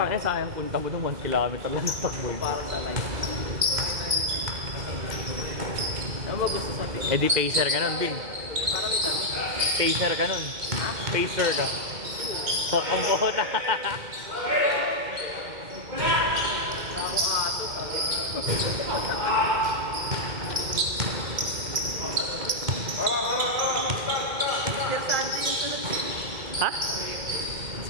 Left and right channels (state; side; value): late; left; 2.1 ms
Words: sayang punta mo ng 1 kilometer lang ng takbo. Para sa life. Ano ba gusto sa atin? Eh di pacer ka nun, Bing. Para may tanong. Pacer ka nun. Pacer ka. Ang bota. Ako ato. Mr. Santi yung sunod. Ha?